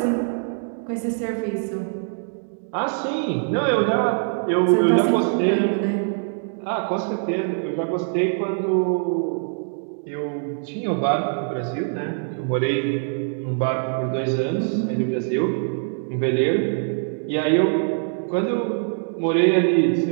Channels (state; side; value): silent; left; 63 dB below the other